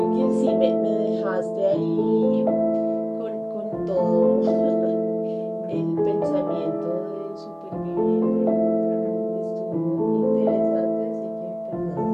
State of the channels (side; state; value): both; identical; correlation 1.00